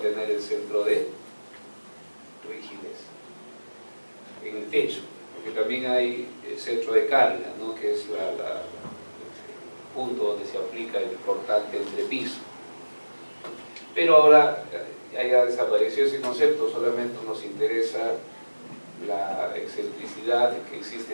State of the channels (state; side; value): inverted; both; correlation -1.00